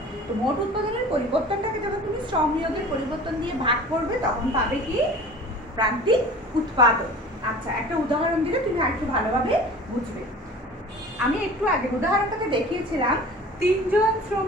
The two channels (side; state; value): both; normal; correlation 0.42